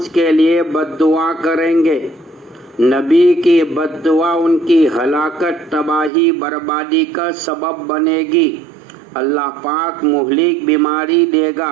کے لیے بد دعا کریں گے۔ نبی کی بد دعا ان کی ہلاکت، تباہی، بربادی کا سبب بنے گی۔ اللہ پاک مہلک بیماری دے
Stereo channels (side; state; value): left; drops out; at 6.1 s